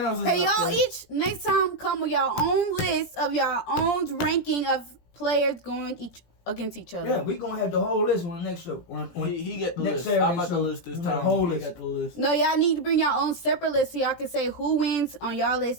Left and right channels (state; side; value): late; right; 17 ms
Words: is Hey, up y'all there. each next time come with y'all own list of y'all own ranking of players going against each other. Yeah, we gonna have the whole list on the next show. He get the next list. Saturday I'm about show, the list this we have time. the whole He list. got the list. No, y'all need to bring your own separate list so y'all can say who wins on y'all list